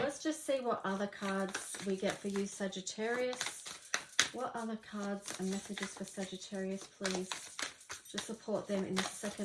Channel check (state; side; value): identical; both; correlation 1.00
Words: just see what other cards we get for you, Sagittarius. What other cards and messages for Sagittarius, please? To support them in the